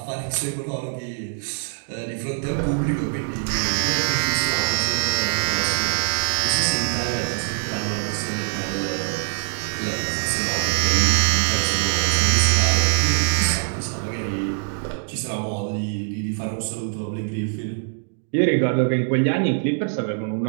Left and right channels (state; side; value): silent; left; 63 dB below the other